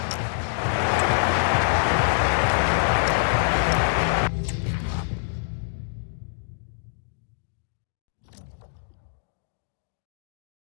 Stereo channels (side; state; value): right; silent; digital silence